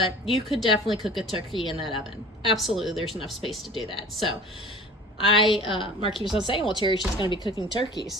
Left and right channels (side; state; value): both; normal; correlation 0.42